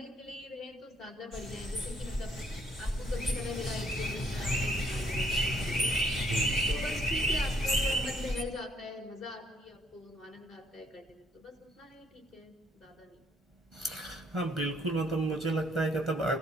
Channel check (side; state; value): both; normal; correlation 0.67